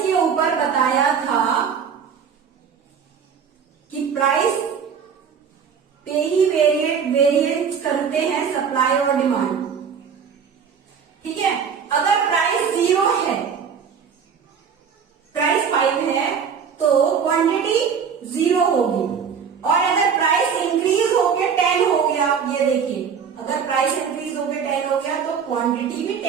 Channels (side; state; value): left; quieter; 6.9 dB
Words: के ऊपर बताया था कि प्राइस पे ही वेरिएट करते हैं सप्लाई और डिमांड। ठीक है, अगर प्राइस 0 है, प्राइस 5 है तो क्वांटिटी 0 होगी, और अगर प्राइस इंक्रीज होके 10 हो गया, ये देखिए, अगर प्राइस इंक्रीज होके 10 हो गया तो क्वांटिटी भी